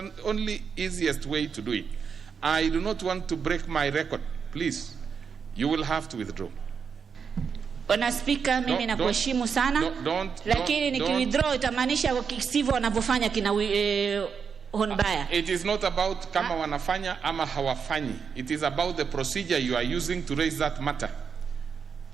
only easiest way to do it. I do not want to break my record. Please, you will have to withdraw. Bwana Speaker, mimi nakuheshimu sana, lakini nikiwithdraw itamaanisha kisivyo wanavyofanya kina Honbaya. It is not about kama wanafanya ama hawafanyi. It is about the procedure you are using to raise that matter.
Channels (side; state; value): left; quieter; 6.3 dB